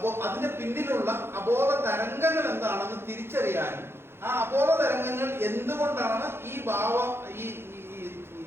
അതിന്റെ പിന്നിലുള്ള അബോധ തരംഗങ്ങൾ എന്താണെന്ന് തിരിച്ചറിയാനും ആ അബോധ തരംഗങ്ങൾ എന്തുകൊണ്ടാണ് ഈ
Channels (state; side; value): late; left; 0.11 ms